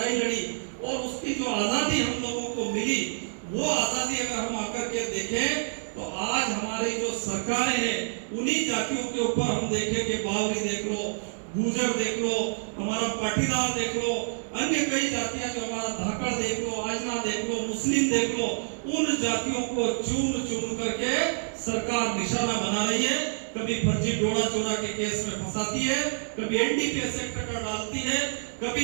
लड़ी और उसकी जो आजादी हम लोगों को मिली, वो आजादी अगर हम आकर के देखें तो आज हमारी जो सरकारें हैं उन्हीं जातियों के ऊपर हम देखें कि बावरी देख लो, गुर्जर देख लो, हमारा पाटीदार देख लो, अन्य कई जातियां जो हमारा धाकड़ देख लो, आजना देख लो, मुस्लिम देख लो, उन जातियों को चुन चुन करके सरकार निशाना बना रही है। कभी फर्जी डोरा चोरा के केस में फंसाती है, कभी एनडीपीएस एक्ट का डालती है,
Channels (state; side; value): silent; left; digital silence